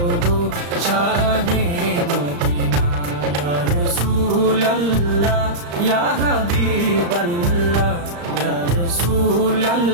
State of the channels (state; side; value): late; left; 35 ms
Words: গো শাহে মদিনা। ইয়া রাসূলুল্লাহ ইয়া হাবিবাল্লাহ, ইয়া